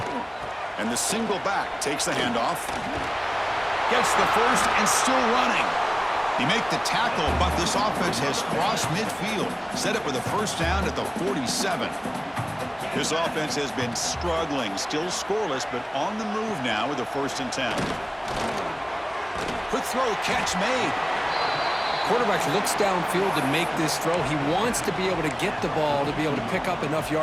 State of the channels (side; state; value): both; identical; correlation 1.00